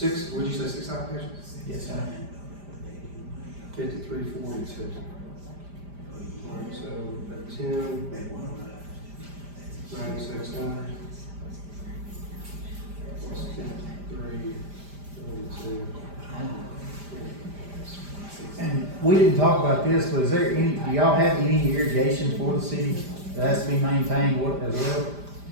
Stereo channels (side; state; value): left; late; 5.0 ms